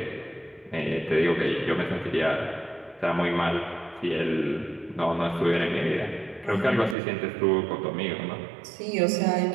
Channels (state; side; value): drops out; left; at 7.0 s